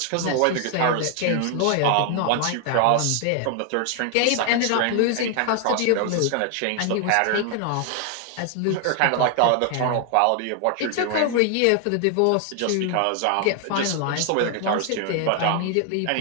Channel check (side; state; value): both; different; correlation 0.00